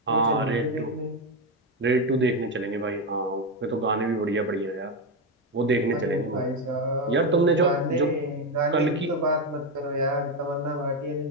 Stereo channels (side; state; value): both; normal; correlation 0.09